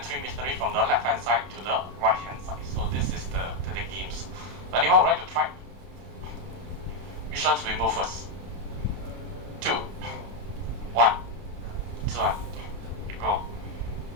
3 missionaries from the left hand side to the right hand side. So this is the games. Anyone would like to try? Which ones we move first? 2, 1, this one, go.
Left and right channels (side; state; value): left; late; 31 ms